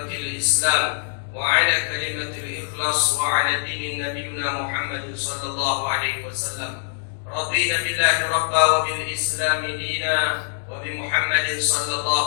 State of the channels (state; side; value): silent; right; digital silence